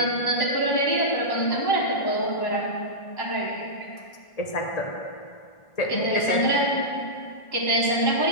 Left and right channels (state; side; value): late; right; 1.5 ms